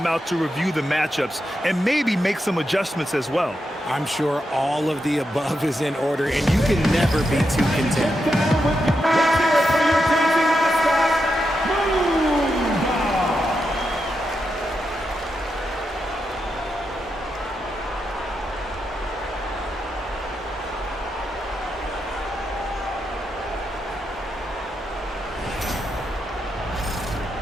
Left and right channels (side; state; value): both; normal; correlation 0.85